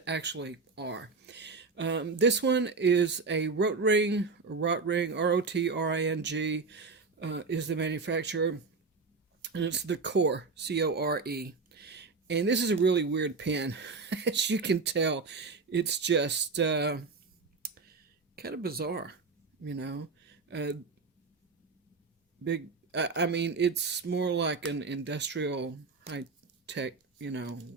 actually are. This one is a Rotring, R-O-T-R-I-N-G, is the manufacturer, and it's the Core, C-O-R-E. And this is a really weird pen. As you can tell, it's just kind of bizarre, you know. I mean, it's more like an industrial high-tech, you know,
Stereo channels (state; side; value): quieter; left; 4.4 dB